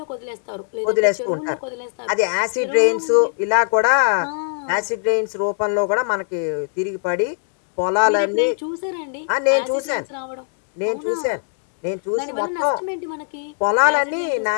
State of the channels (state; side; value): silent; right; 65 dB below the other